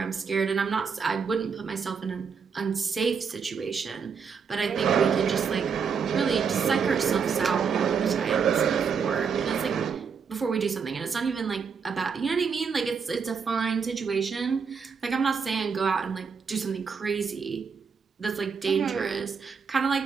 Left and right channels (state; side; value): quieter; left; 6.1 dB